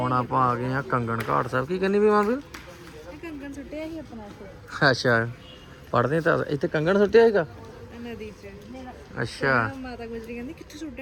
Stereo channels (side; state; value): both; identical; correlation 1.00